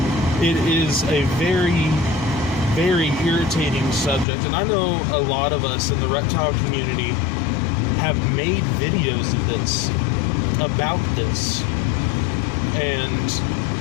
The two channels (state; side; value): drops out; right; at 4.2 s